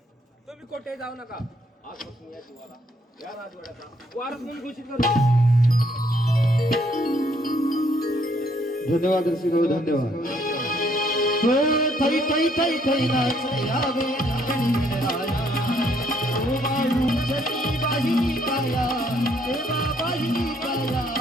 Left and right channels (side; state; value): both; normal; correlation 0.68